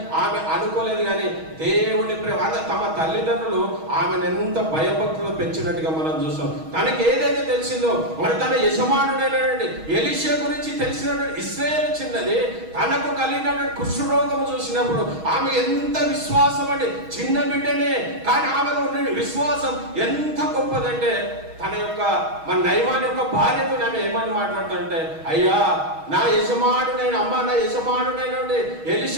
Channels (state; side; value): late; left; 6.3 ms